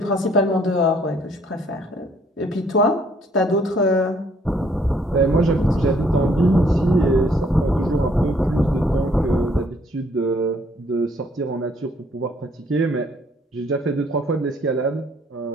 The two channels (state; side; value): normal; both; correlation 0.65